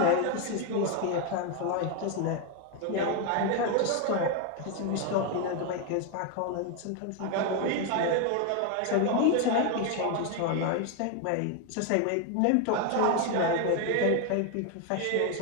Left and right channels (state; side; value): different; both; correlation 0.01